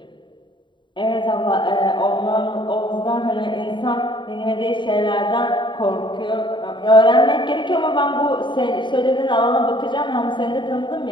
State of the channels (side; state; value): right; late; 0.23 ms